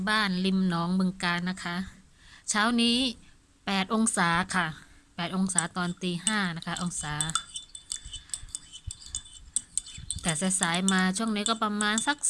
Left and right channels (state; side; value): identical; both; correlation 1.00